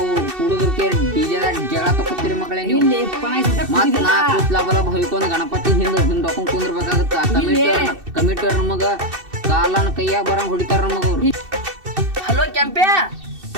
ಹುಡುಗರ್ಗೆ ಡಿಜೆದಾಗ ಜಗಳ ತಕೋತೀರಿ ಮಕ್ಕಳೇ ನೀವು. ಮತ್ ನಾ ಕೂತ್ಲಾ ಬಲ ಹೊಯ್ಕೊಂಡ್ ಗಣಪತಿ ಹಿಂದ್ ಹೊಕೊಂಡ್ ಕುಂದ್ರಬೇಕಾಗತ್ತ. ಕಮಿಟಿಯವ್ರ ನಮಗ ಕಾಲನ ಕೈಯಾಗ ಬರಂಗ್ ಹೊಡಿತಾರ ನಮಗ ಅವ್ರು. ಹಲೋ ಕೆಂಪ್ಯಾ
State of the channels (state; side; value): late; left; 2.6 ms